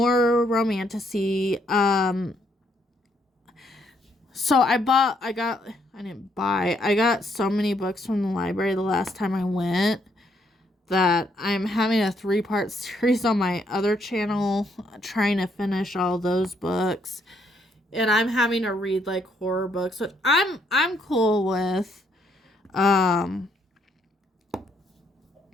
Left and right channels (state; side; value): normal; both; correlation 0.72